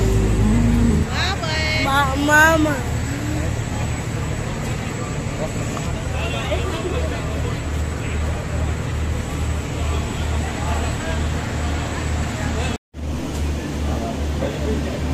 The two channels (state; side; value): identical; both; correlation 1.00